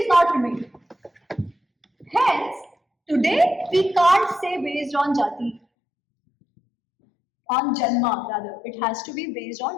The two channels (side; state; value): right; drops out; at 5.6 s